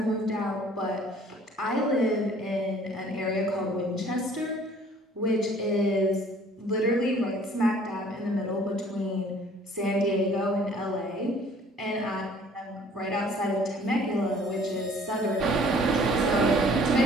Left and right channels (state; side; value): normal; both; correlation 0.54